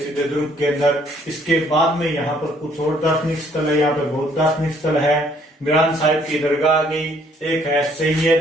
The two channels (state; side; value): normal; both; correlation 0.64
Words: दुर्ग के अंदर। इसके बाद में यहाँ पर कुछ और दार्शनिक स्थल है। यहाँ पर बहुत दार्शनिक स्थल है। मीरान साहिब की दरगाह आ गई, एक है